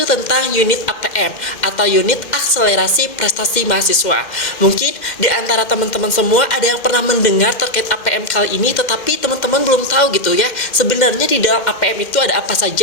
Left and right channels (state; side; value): late; right; 2.1 ms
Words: tentang unit APM atau unit akselerasi prestasi mahasiswa. Mungkin di antara teman-teman semua ada yang pernah mendengar terkait APM kali ini, tetapi teman-teman belum tahu gitu ya, sebenarnya di dalam APM itu ada apa